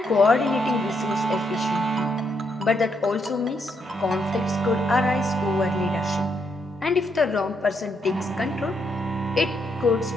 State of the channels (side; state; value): both; normal; correlation 0.77